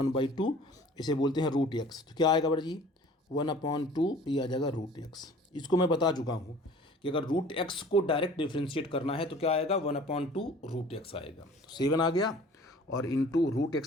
इसे बोलते हैं रूट एक्स। तो क्या आएगा बड़ा जी? 1/2, ये आ जाएगा रूट एक्स। इसको मैं बता चुका हूँ कि अगर रूट एक्स को डायरेक्ट डिफ्रेंशिएट करना है तो क्या आएगा? 1/2 रूट एक्स आएगा। तो 7 आ गया और इंटू रूट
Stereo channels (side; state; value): both; normal; correlation 0.48